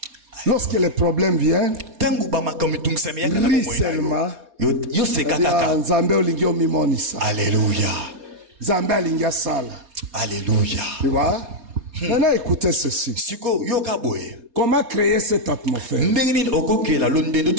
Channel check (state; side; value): late; left; 4.2 ms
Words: Lorsque les problèmes viennent, ris seulement. Alléluia. Alléluia. Tu vois? Maintenant écoutez ceci. Comment créer cette atmosphère?